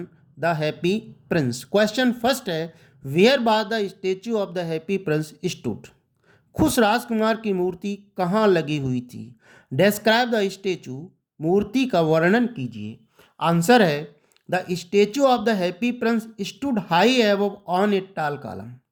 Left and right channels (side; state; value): both; identical; correlation 1.00